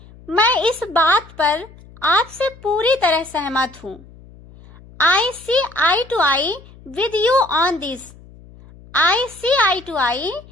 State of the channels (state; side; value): noise; left; hum, 22 dB below the sound